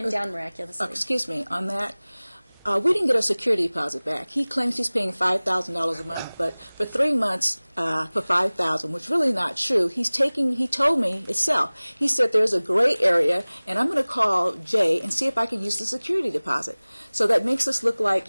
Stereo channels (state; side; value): inverted; both; correlation -1.00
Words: down miraculously. Excuse me, on that, We didn't get a security deposit back. He claims he's paying $5,000 a month, but for 3 months, for $5,000, which is really not true. He told me itself. He said there's a gray area, and I'm going to call Jay and see if I can use the security deposit. So that makes us look like